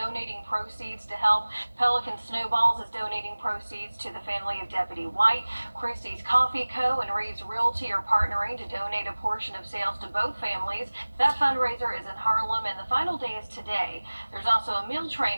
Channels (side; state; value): both; inverted; correlation -1.00